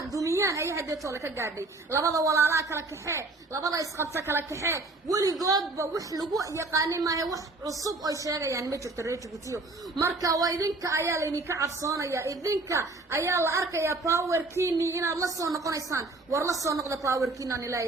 dumiyaan ay hadda toole ka gaadhay labada walaalaha kala kaxee labada isqabta kala kaxee weligoodba wax lagu yaqaanay maahay wax cusub oo sheegayaan ma jirto reer Djibouti marka waa idinka ayaa la idinka cabsoonaya idinka ayaa la arkaya powerkiini inaad la soo noqonaysaan war la soo noqda powerkiina aan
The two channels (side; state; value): left; quieter; 3.2 dB